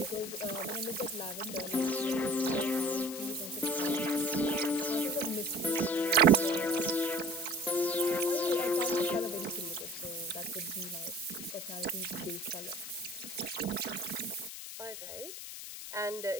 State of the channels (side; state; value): left; noise; hiss, 9 dB below the sound